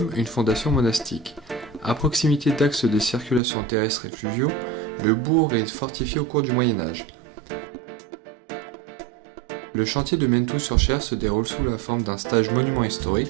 une fondation monastique. À proximité d'axes de circulation terrestre et fluviaux, le bourg est fortifié au cours du Moyen-Âge. Le chantier de Menthou-sur-Cher se déroule sous la forme d'un stage monument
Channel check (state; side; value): drops out; left; at 3.4 s